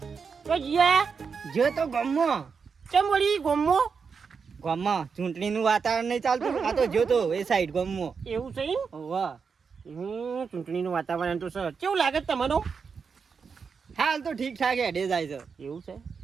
તો જે તો ગમમાં કેમ વળી ગામમાં ચૂંટણીનું વાતાવરણ નહીં ચાલતું આ તો જોતો એ સાઈડ ગામમાં એવું છે વાહ ચૂંટણીનું વાતાવરણ તો સર કેવું લાગે તમારું હાલ તો ઠીક ઠાક હેડે જાય છે એવું છે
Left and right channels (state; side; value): quieter; left; 5.7 dB